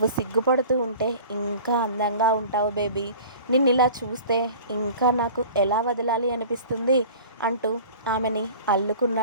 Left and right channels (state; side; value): inverted; both; correlation -0.42